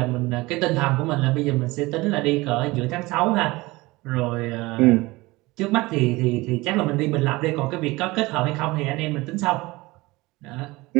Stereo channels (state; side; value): quieter; left; 21.4 dB